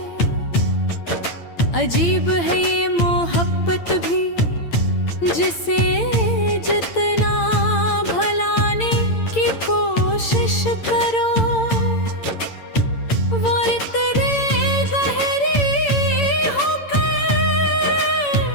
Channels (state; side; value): late; right; 8.8 ms